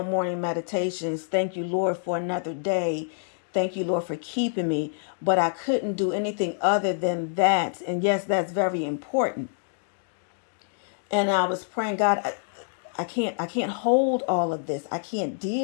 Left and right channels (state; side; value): silent; right; digital silence